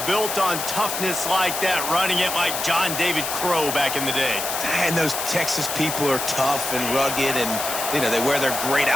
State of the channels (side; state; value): left; noise; hiss, 4 dB below the sound